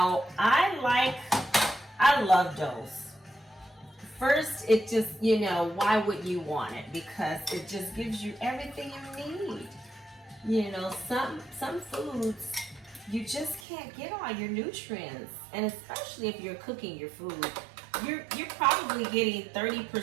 I love Dulce. First, it just, why would you want it? Because it just gives you everything you need. Some foods, you just can't get all your nutrients. And especially if you're cooking your food, you're probably getting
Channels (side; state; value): left; drops out; at 13.6 s